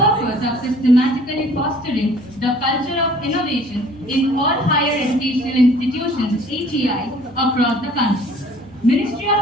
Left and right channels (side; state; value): both; normal; correlation 0.53